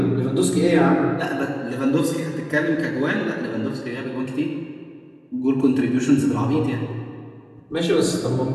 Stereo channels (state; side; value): identical; both; correlation 1.00